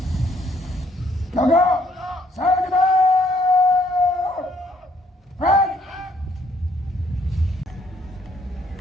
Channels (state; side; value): normal; both; correlation 0.67